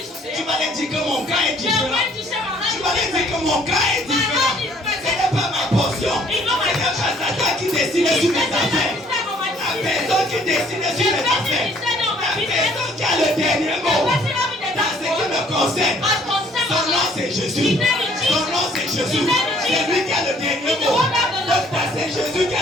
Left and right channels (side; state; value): both; normal; correlation 0.60